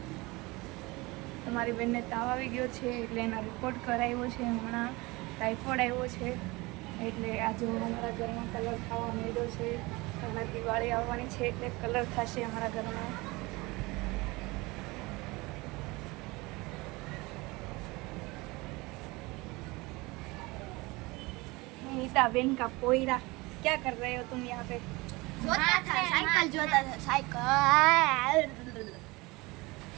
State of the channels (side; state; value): left; quieter; 23.3 dB